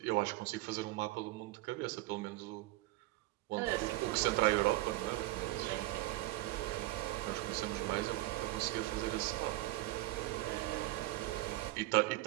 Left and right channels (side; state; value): left; quieter; 18.3 dB